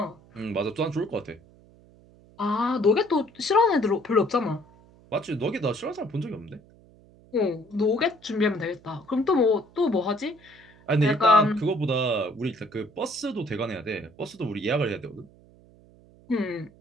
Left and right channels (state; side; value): noise; right; hum, 26 dB below the sound